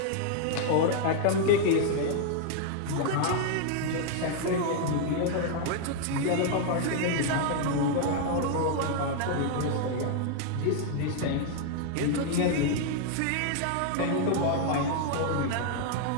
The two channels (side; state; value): both; different; correlation 0.00